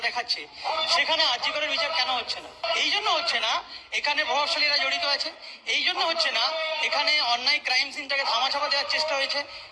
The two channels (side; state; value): both; identical; correlation 1.00